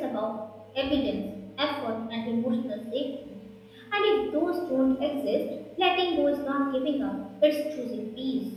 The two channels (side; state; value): both; identical; correlation 1.00